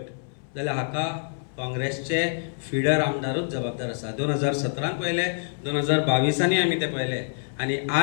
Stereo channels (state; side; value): silent; right; 59 dB below the other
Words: जाल्यार हाका काँग्रेसचे फिडर आमदारूच जबाबदार आसा. 2017 पयले, 2022 आमी ते पयले. आनी